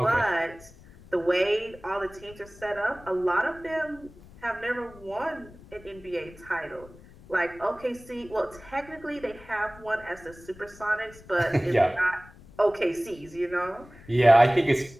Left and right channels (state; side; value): noise; left; rumble, 21 dB below the sound